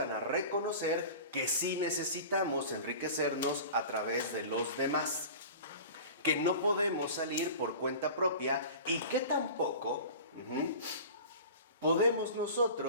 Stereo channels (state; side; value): inverted; both; correlation -0.37